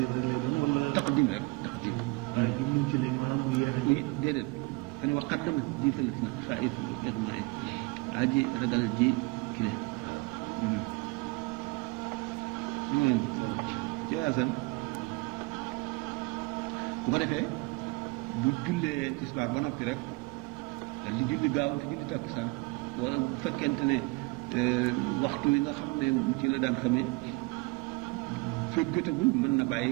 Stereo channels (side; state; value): left; quieter; 26.0 dB